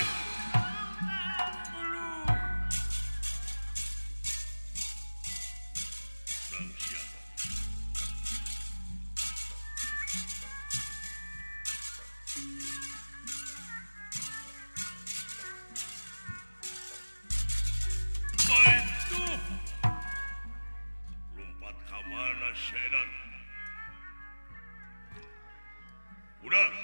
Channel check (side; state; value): both; inverted; correlation -1.00